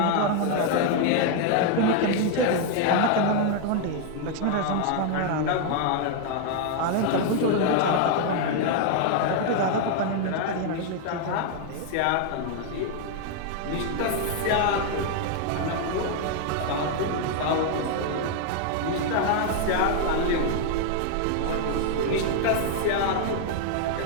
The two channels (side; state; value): both; different; correlation 0.00